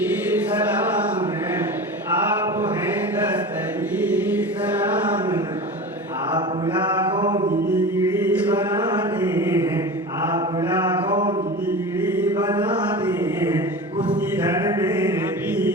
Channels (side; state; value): both; normal; correlation 0.31